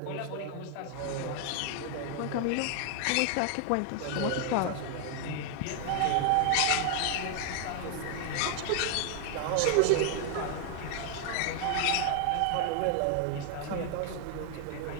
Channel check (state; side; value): different; both; correlation 0.00